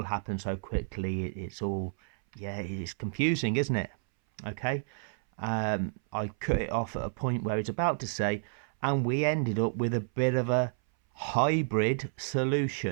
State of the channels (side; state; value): left; silent; 57 dB below the other